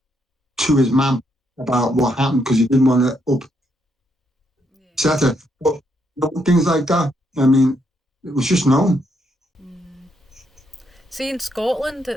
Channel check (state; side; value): normal; both; correlation 0.76